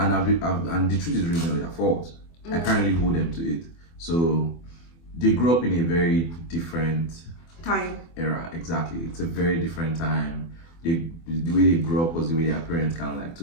and the truth is really not their fault. I can't really hold them to it. So they grew up in a very different time era. Exactly, it's a very different time. The way they grew up was the way their parents kind of like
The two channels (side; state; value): right; late; 24 ms